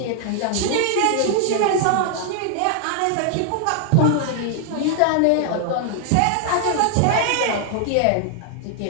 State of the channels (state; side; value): different; both; correlation 0.00